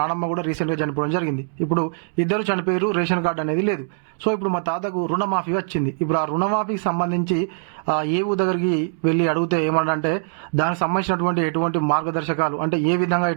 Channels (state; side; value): silent; left; 64 dB below the other